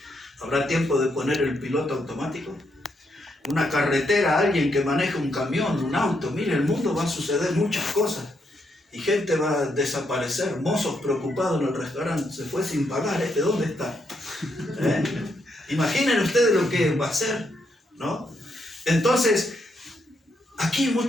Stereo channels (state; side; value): normal; both; correlation 0.78